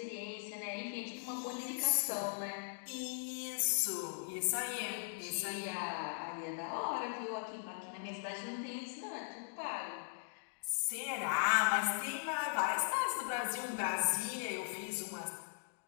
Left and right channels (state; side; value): silent; right; digital silence